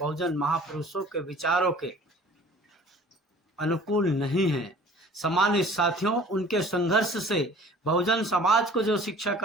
महापुरुषों के विचारों के अनुकूल नहीं हैं। सम्मानित साथियों, उनके संघर्ष से बहुजन समाज को जो शिक्षा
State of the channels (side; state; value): both; normal; correlation 0.48